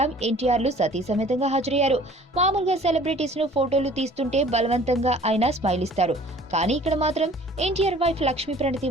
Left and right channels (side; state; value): both; normal; correlation 0.51